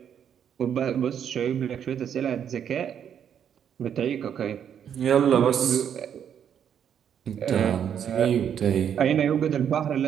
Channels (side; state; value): left; quieter; 8.7 dB